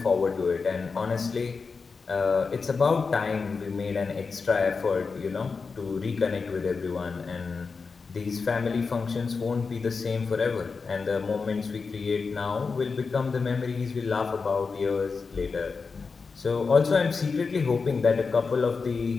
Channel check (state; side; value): quieter; right; 4.8 dB